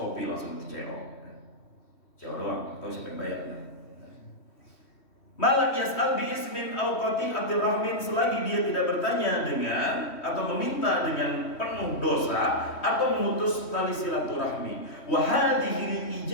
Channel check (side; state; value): right; late; 3.1 ms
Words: langsung CEO doang, atau siapa yang bayar? Malam yas'al bi ismin au qati'atir rahmin, selagi dia tidak bertanya dengan atau meminta dengan penuh dosa atau memutus tali silaturahmi. Wa hadhihi